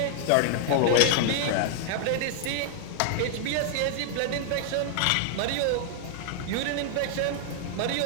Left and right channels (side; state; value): both; different; correlation 0.00